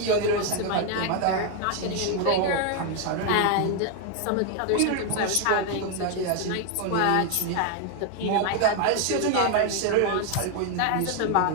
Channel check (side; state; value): both; different; correlation 0.01